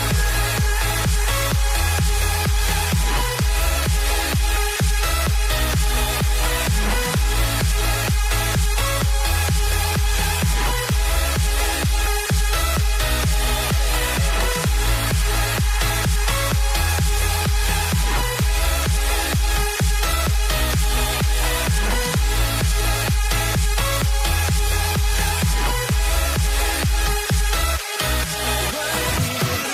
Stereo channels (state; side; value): identical; both; correlation 1.00